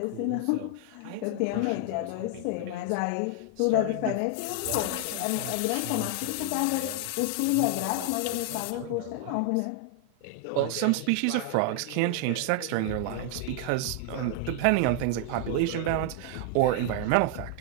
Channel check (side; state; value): both; different; correlation 0.00